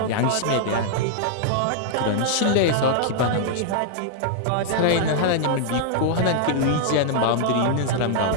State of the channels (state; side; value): different; both; correlation -0.01